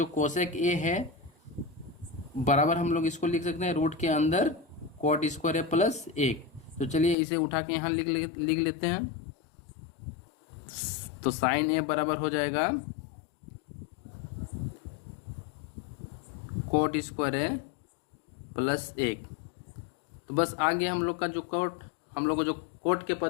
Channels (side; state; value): right; drops out; at 7.2 s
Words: कोसेक ए है बराबर हम लोग इसको लिख सकते हैं रूट के अंदर कोट स्क्वायर है प्लस 1। तो चलिए इसे उठा के यहाँ लिख लेते हैं। तो साइन ए बराबर हो जाएगा कोट स्क्वायर है प्लस 1। तो बस आगे हम लोग का जो कोट, हम लोग को जो कोट के